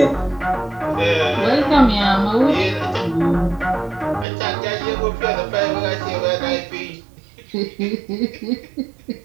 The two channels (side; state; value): left; drops out; at 4.2 s